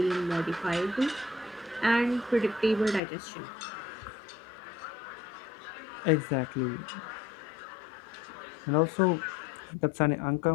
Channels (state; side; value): drops out; right; at 3.0 s